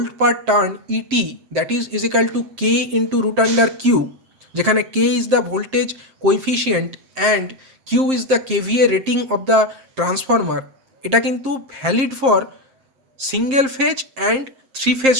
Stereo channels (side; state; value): left; late; 7.6 ms